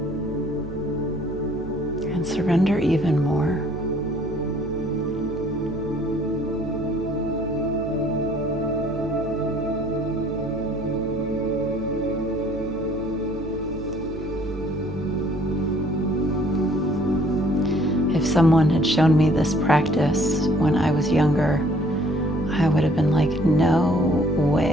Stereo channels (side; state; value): right; noise; hum, 12 dB below the sound